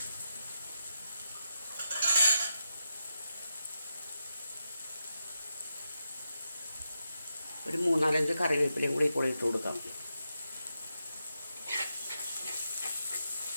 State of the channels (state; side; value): inverted; both; correlation -0.86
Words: ഒരു 3-4 കറിവേപ്പിലയും കൂടി ഇപ്പോൾ ഇട്ട് കൊടുക്കാം.